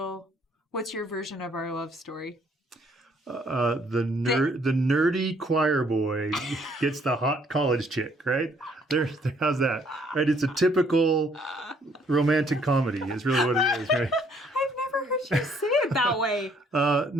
what's your version of our love story? The nerdy choir boy gets the hot college chick, right? How's that? Right? It's a typical romantic comedy is really what it is, right? I've never heard you say it that way.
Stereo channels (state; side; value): normal; both; correlation 0.65